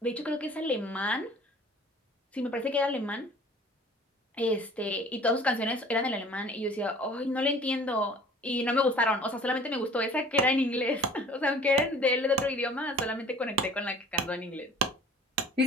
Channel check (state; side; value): normal; both; correlation 0.48